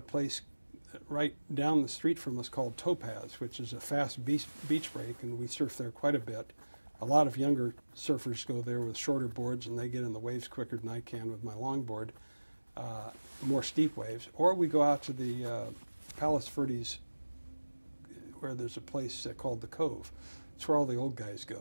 place right down the street from us called Topaz, which is a fast beach break, and we surf there quite a bit. A lot of younger surfers go there with shorter boards, and they get in the waves quicker than I can with my longboard, more steep waves. Or we go out to the Palos Verdes, where there's a place called the Cove. It's where all the old guys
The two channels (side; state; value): both; inverted; correlation -1.00